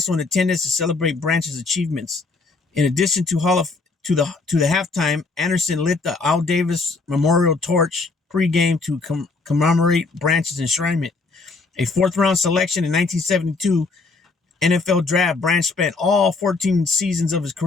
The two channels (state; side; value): quieter; right; 3.9 dB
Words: in attendance to celebrate Branch's achievements. In addition to the halftime, Anderson lit the Al Davis Memorial Torch pregame to commemorate Branch's enshrinement. A fourth-round selection in 1972 NFL draft, Branch spent all 14 seasons of his